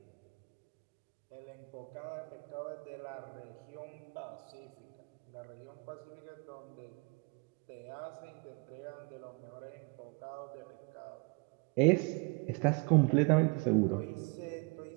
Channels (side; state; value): left; quieter; 31.4 dB